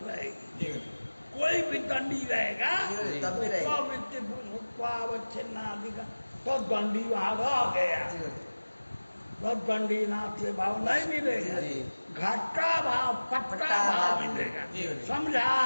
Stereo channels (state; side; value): inverted; both; correlation -1.00